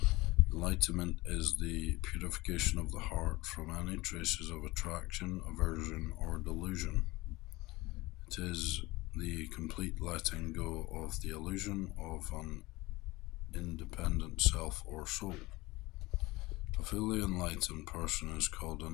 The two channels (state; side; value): quieter; right; 21.0 dB